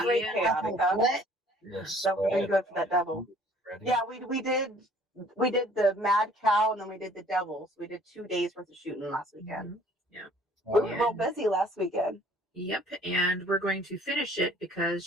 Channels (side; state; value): both; normal; correlation 0.55